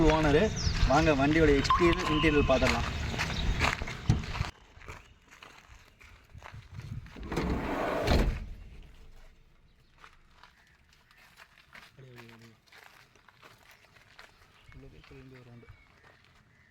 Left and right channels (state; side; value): identical; both; correlation 1.00